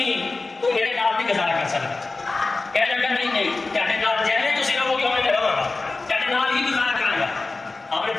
تو میرے نال نہیں گزارا کر سکتا۔ کہنے لگا نہیں تیرے نال جیسے تسی رہو گے میں رہاں گا، تیرے نال ہی گزارا کروں گا۔ آپ نے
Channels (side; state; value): right; quieter; 3.5 dB